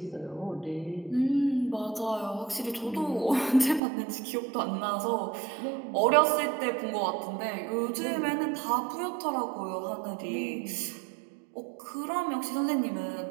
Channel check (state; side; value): drops out; left; at 3.8 s